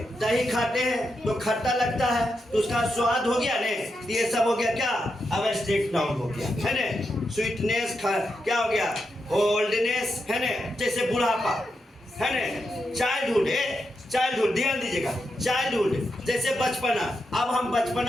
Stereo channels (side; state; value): both; normal; correlation 0.85